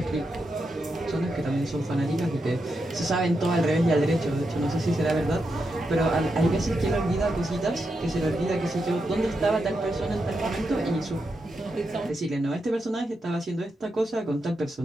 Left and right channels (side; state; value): both; normal; correlation 0.86